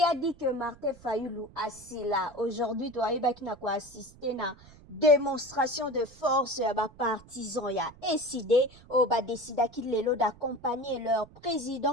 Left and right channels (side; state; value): right; noise; rumble, 23 dB below the sound